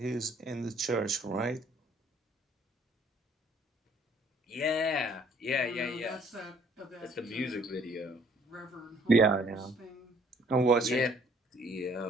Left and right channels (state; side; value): normal; both; correlation 0.61